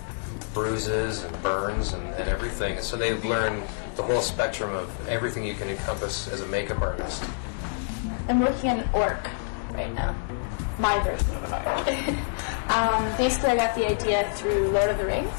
bruises and burns and everything. So they've learned the whole spectrum of everything you can encompass as a makeup artist. I'm working on an orc right now. My version of an orc. Basically, I got the idea through Lord of the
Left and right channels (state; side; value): silent; right; digital silence